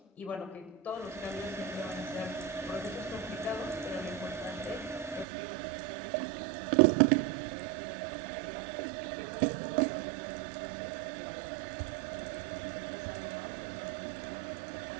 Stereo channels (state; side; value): drops out; left; at 5.2 s